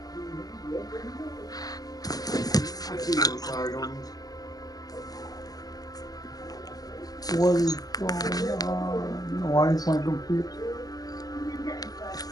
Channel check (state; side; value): late; right; 0.18 ms